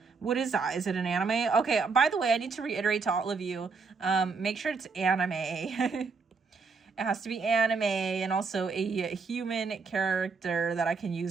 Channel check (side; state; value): left; quieter; 4.7 dB